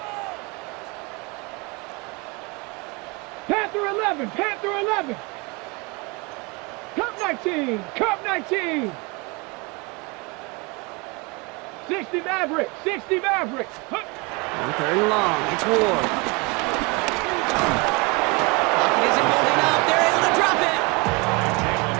Panther 11, Panther 11. Cup 19, Cup 19. 60 Maverick, 60 Maverick. On third and long, it's Ward. Pocket isn't holding up. They're able to drop it.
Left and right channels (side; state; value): left; quieter; 28.5 dB